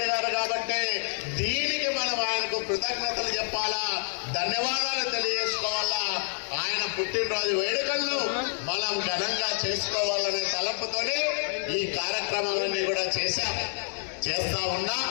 గారు. కాబట్టి దీనికి మనం ఆయనకు కృతజ్ఞతలు చెప్పాలా, ధన్యవాదాలు తెలియజేసుకోవాలా. ఆయన పుట్టినరోజు వేడుకలను మనం ఘనంగా చేసుకోవాలనే తలంపుతోనే ఈ కార్యక్రమాలన్నీ కూడా చేస్తా ఉన్నాం.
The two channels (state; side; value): silent; right; 59 dB below the other